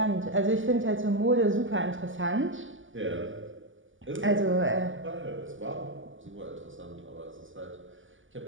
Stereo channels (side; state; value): left; late; 0.57 ms